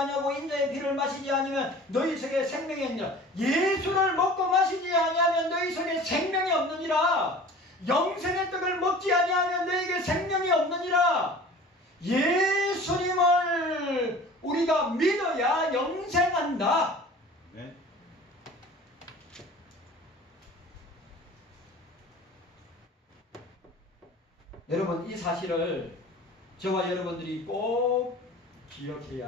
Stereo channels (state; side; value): normal; both; correlation 0.43